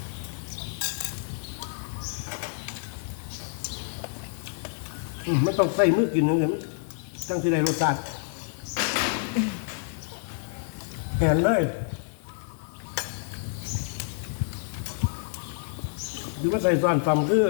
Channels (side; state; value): right; silent; 59 dB below the other